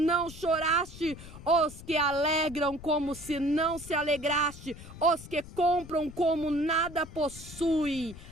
choraste, os que alegram como se não se alegraste, os que compram como nada possui.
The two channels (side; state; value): left; noise; rumble, 15 dB below the sound